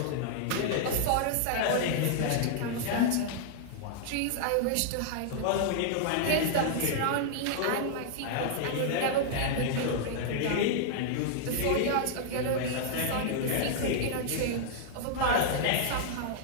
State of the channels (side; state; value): both; different; correlation -0.01